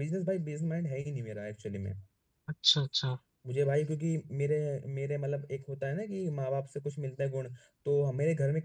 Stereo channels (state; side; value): identical; both; correlation 1.00